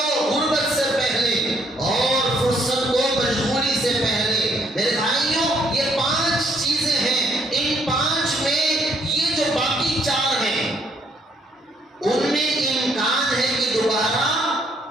غربت سے پہلے، اور فرصت کو مشغولی سے پہلے۔ میرے بھائیوں یہ 5 چیزیں ہیں، ان 5 میں یہ جو باقی 4 ہیں ان میں امکان ہے کہ دوبارہ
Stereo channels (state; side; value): normal; both; correlation 0.68